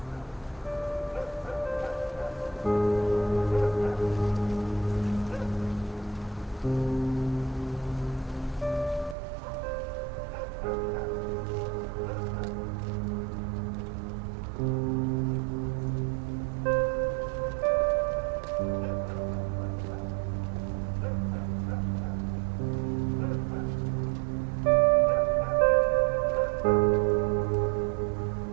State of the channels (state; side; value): drops out; left; at 9.2 s